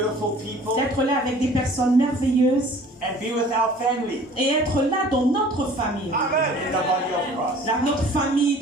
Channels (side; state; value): both; normal; correlation 0.49